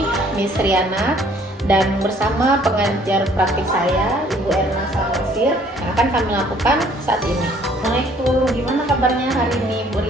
Miss Riana, dan bersama pengajar praktik saya, Ibu Erna Salmasir, yang akan kami lakukan saat ini. Assalamualaikum, gimana kabarnya hari ini, Bu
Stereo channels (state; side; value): normal; both; correlation 0.59